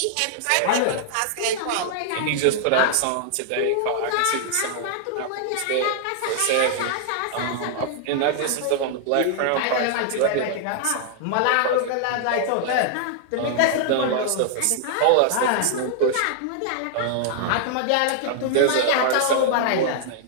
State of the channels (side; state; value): both; different; correlation -0.01